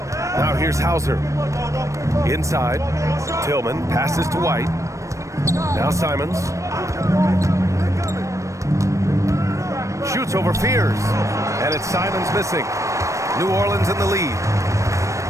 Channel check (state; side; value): late; left; 0.15 ms